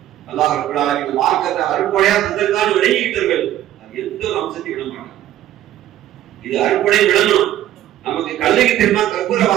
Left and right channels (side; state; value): left; quieter; 12.7 dB